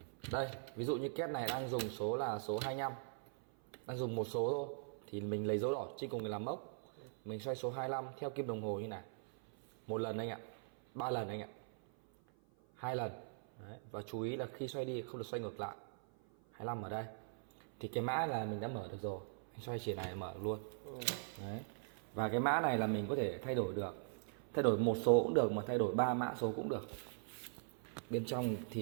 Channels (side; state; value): left; silent; 50 dB below the other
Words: Đây, ví dụ như két này đang dùng số là số 25, đang dùng một số thôi, thì mình lấy dấu đỏ trên cùng để làm mốc. Mình xoay số 25 theo kim đồng hồ như này. Một lần anh ạ, 3 lần anh ạ, 2 lần. Đấy. Và chú ý là khi xoay đi không được xoay ngược lại. 25 ở đây. Thì cái mã là mình đã mở được rồi. Anh xoay chỉ này là mở được luôn. Đấy. Và cái mã này là mình có thể thay đổi được. Thay đổi một số cũng được, mà thay đổi 3 mã số cũng được. Bên trong